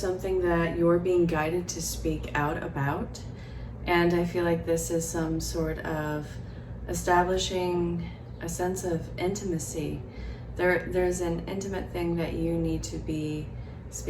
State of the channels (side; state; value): both; identical; correlation 1.00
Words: that you're being guided to speak out about, and I feel like this is some sort of establishing a sense of intimacy. There's an intimate thing that you need to be